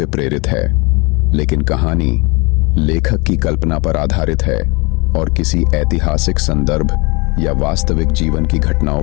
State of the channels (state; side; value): quieter; right; 28.0 dB